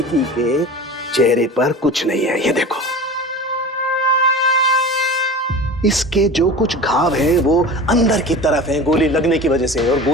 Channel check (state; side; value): normal; both; correlation 0.34